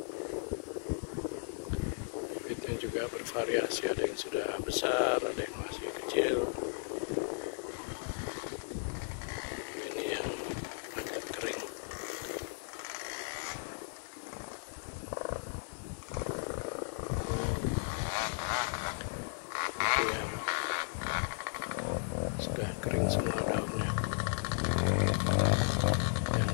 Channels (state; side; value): silent; right; 54 dB below the other